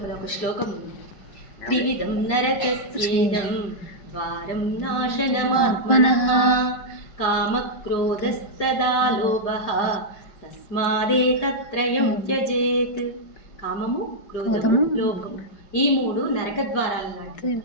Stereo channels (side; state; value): right; late; 5.0 ms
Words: ఒక శ్లోకం ఉంది. త్రివిధం నరకస్యేదం వారం నాశనమాత్మనః కామక్రోధస్తదా లోభః తస్మాదేతత్రయం త్యజేత్. కామము, క్రోధము, లోభము ఈ మూడు నరక ద్వారాలు లాంటివి.